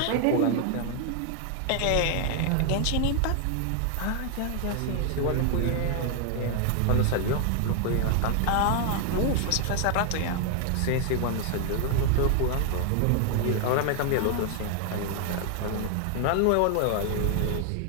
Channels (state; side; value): different; both; correlation 0.00